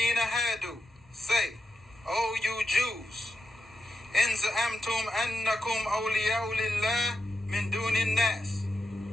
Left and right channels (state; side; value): normal; both; correlation 0.88